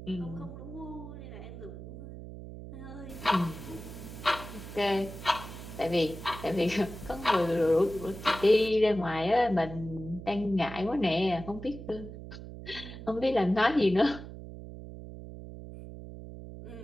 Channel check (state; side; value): noise; right; hum, 12 dB below the sound